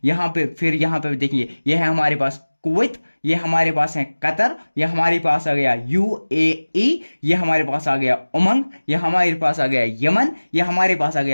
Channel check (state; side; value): inverted; both; correlation -1.00